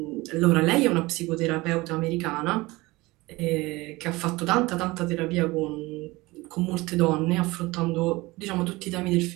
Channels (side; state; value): left; quieter; 21.4 dB